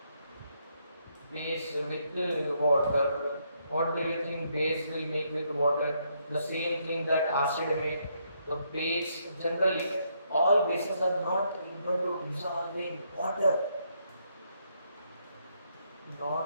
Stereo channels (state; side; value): inverted; both; correlation -0.75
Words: Base with water. What do you think base will make with water? The same thing that acid made. The base, generally, all bases are not able to dissolve in water.